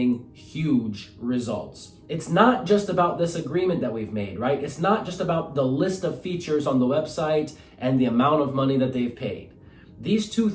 huge results. It's not just about this agreement that we've made, right? It's not just about the list of features on the website and the amount of money that they've paid. These two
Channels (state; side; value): identical; both; correlation 1.00